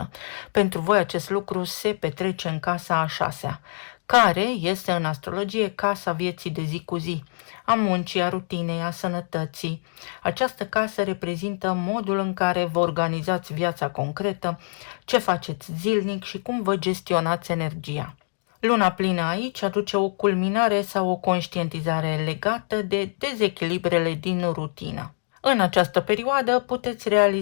Pentru voi acest lucru se petrece în casa a 6-a, care este în astrologie casa vieții de zi cu zi, a muncii, a rutinei, a sănătății. Această casă reprezintă modul în care vă organizați viața concretă, ce faceți zilnic și cum vă gestionați energia. Luna plină aici aduce o culminare sau o conștientizare legată de dezechilibrele din rutină. În această perioadă puteți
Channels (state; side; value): silent; right; digital silence